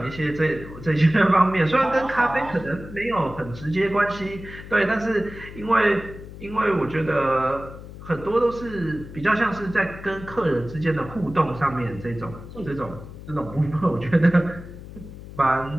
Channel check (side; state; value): left; noise; hum, 14 dB below the sound